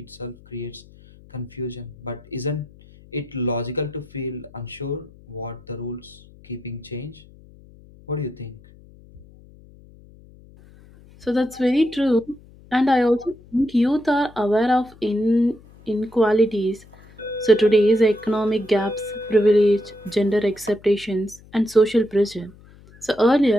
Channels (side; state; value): left; noise; hum, 24 dB below the sound